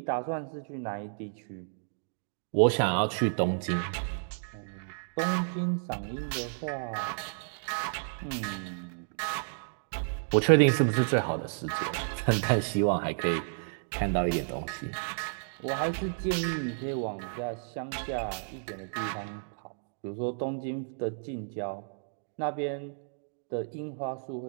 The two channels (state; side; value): silent; left; digital silence